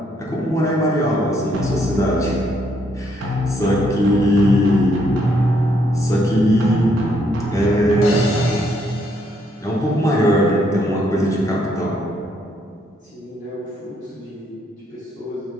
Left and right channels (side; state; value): both; normal; correlation 0.72